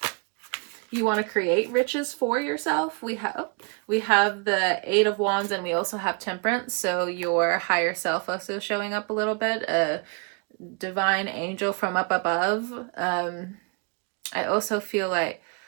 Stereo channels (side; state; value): left; quieter; 35.4 dB